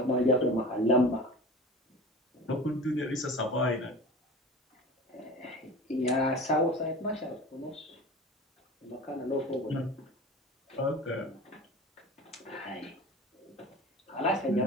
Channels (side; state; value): both; normal; correlation 0.36